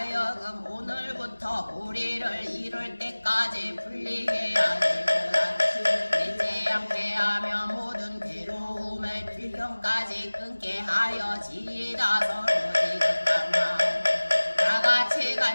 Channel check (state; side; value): inverted; both; correlation -1.00